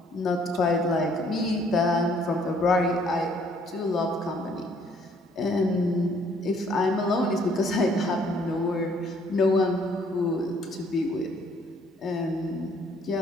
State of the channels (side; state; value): both; normal; correlation 0.63